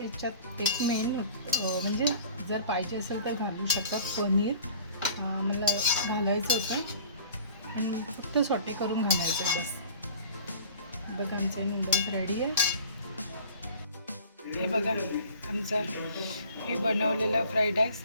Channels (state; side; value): inverted; both; correlation -0.45